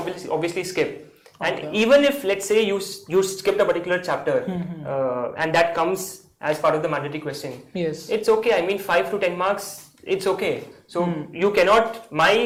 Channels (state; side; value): identical; both; correlation 1.00